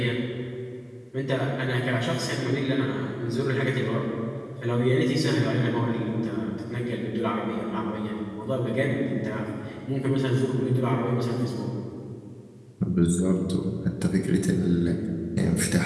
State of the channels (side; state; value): both; identical; correlation 1.00